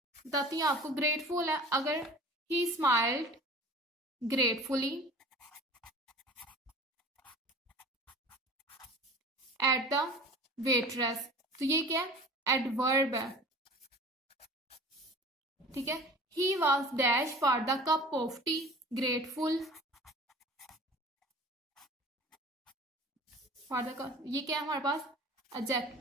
बताती हूँ आपको, ग्रेटफुल है, अगर ही smiled gratefully at the waitress, तो ये क्या है, एडवर्ब है, ठीक है। He was dash for the cup of T, grateful for the cup, ये क्या है हमारे पास,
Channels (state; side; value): normal; both; correlation 0.42